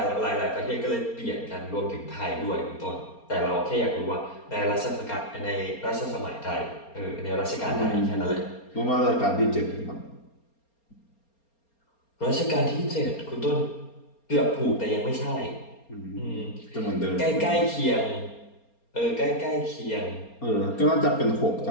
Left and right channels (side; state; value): right; late; 4.3 ms